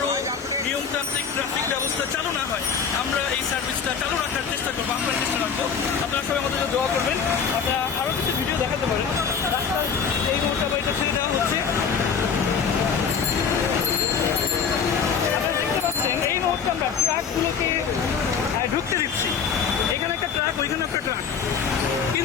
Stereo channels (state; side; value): quieter; right; 6.5 dB